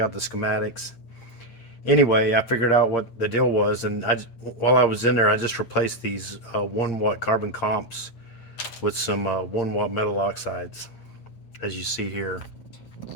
out the schematics. Anyway, I figured out what the deal was, and while I was in there, I just replaced these 1 watt carbon comps with some 1 watt metal oxides, as you see here.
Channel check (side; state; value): right; late; 8.7 ms